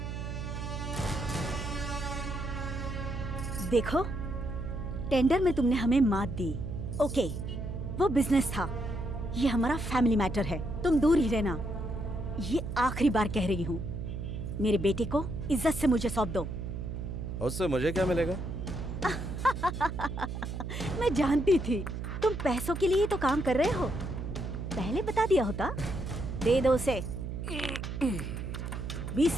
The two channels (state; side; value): noise; right; hum, 5 dB below the sound